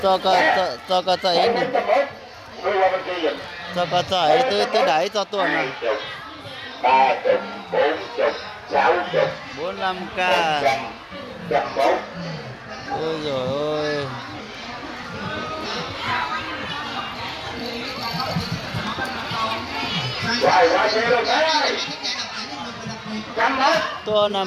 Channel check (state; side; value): identical; both; correlation 1.00